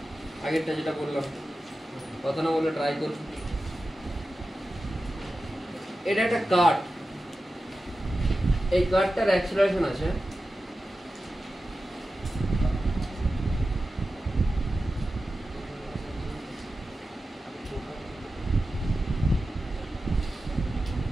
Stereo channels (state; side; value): normal; both; correlation 0.93